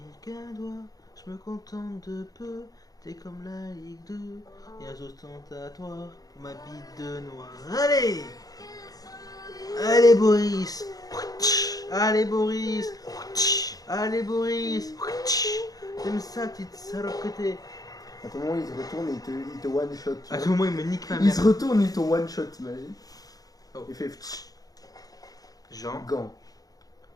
qu'un doigt. Je me contente de peu, t'es comme la Ligue 2 et un ostentatoire pour ma bite de noir. Allez! Allez Boris! Allez Boris! Allez Boris! T'aimes ça, petite salope que t'es? À tout moment, il se retourne et il te one shot. À tout moment, il me nique ma Il se mère. retourne et il te one shot, t'imagines? Oh. Il fait ptsch, Jean, gant.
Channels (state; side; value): late; right; 0.18 ms